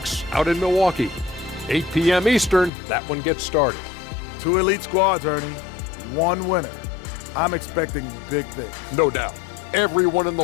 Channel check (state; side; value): drops out; right; at 2.7 s